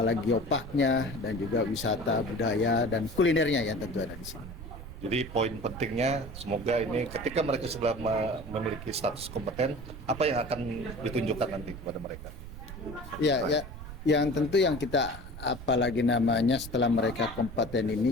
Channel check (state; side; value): noise; right; rumble, 12 dB below the sound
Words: geoparknya, dan juga wisata budaya dan kulinernya yang tentu ada di sini. Jadi poin pentingnya semoga ini ketika mereka sudah memiliki status kompeten, apa yang akan ditunjukkan nanti kepada mereka? Ya, yang tentu yang kita apalagi namanya setelah mereka kompeten